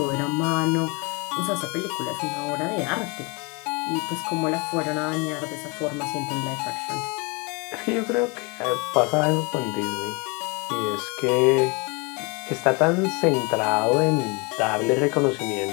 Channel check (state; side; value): quieter; right; 29.4 dB